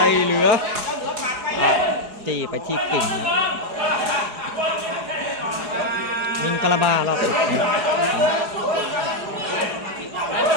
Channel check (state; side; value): late; left; 4.8 ms